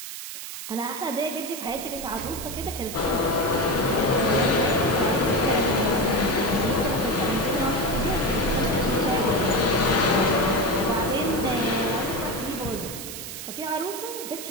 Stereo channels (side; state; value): right; noise; hiss, 9 dB below the sound